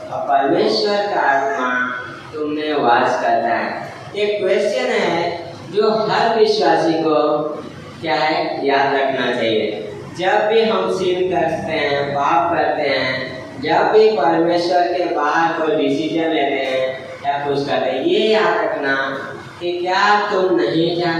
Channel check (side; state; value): both; identical; correlation 1.00